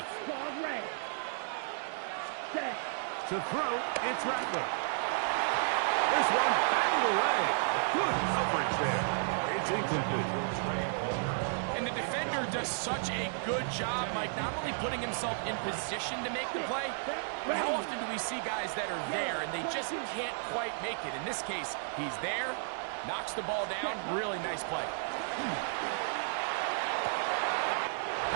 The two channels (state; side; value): silent; left; digital silence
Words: To throw, it's Rattler. This one batted away. Good coverage there. It's incomplete. And the defender does such a good job, Mike, not only putting himself in position to make the play, but how often do we see guys that are there and they just can't quite make it? In this case, he's there, knocks the ball down. Really nice play.